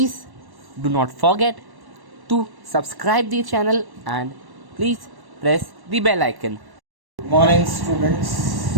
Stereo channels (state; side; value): late; left; 1.1 ms